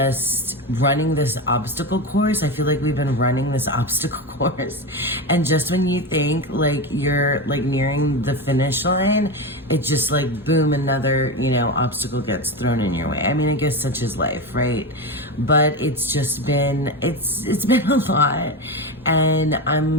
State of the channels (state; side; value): normal; both; correlation 0.18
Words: running this obstacle course. I feel like we've been running this obstacle course, and just when you think like you're like nearing the finish line, it just like boom, another obstacle gets thrown in your way. I mean, I guess such is life, right? But it's just been it's been a lot, and